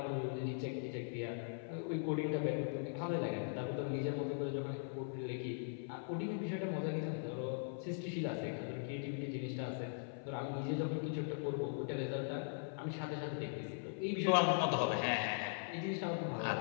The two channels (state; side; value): silent; right; 51 dB below the other